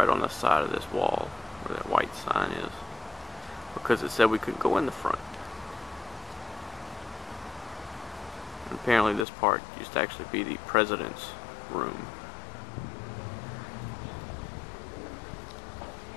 on the side of this wall where that white sign is, because it said we couldn't go in the front. And apparently this part used to actually be the president's room.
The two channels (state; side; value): drops out; right; at 9.2 s